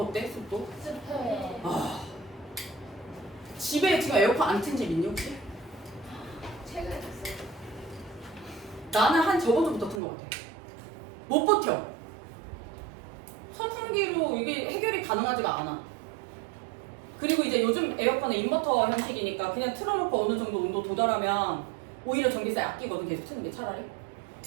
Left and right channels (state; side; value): drops out; left; at 10.0 s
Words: 습도? 습해. 아 집에 지금 에어컨 안 튼 집 있니 혹시? 최근에 됐어요. 나는 한 저번 주부터 튼 것 같아. 못 버텨. 선풍기로 이게 해결이 가능하지가 않아. 그리고 이제 요즘 에어컨은 인버터 형식이니까 그냥 틀어놓고 어느 정도 온도 도달하면 오히려 전기세 아끼거든, 계속 트는 게 차라리.